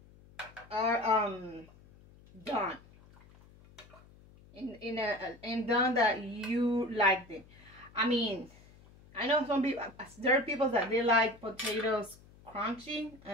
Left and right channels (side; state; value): left; noise; hum, 24 dB below the sound